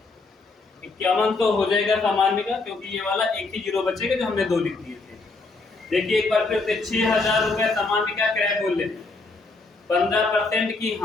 5100 हो जाएगा सामान्य का, क्योंकि ये वाला एक ही जीरो बचेगा जो हमने दो लिख दिए थे। देखिए एक बार फिर से 6,000 रुपए सामान्य का क्रय मूल्य, 15% की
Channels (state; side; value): quieter; right; 3.7 dB